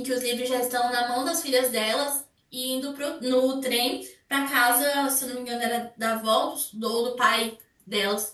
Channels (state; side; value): identical; both; correlation 1.00